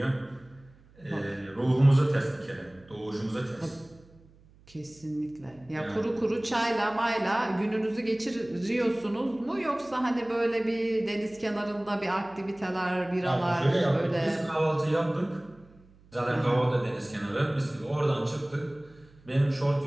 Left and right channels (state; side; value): noise; right; hum, 27 dB below the sound